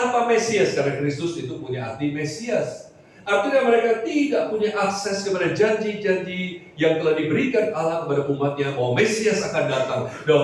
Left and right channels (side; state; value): both; identical; correlation 1.00